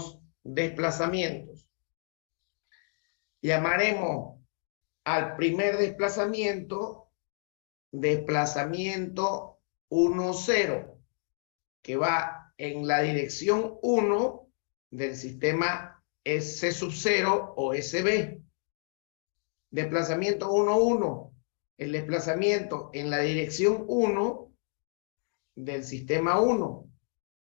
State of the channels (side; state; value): right; silent; 58 dB below the other